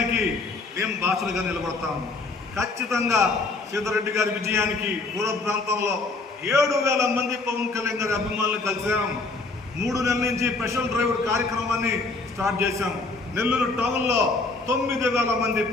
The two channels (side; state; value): right; quieter; 3.6 dB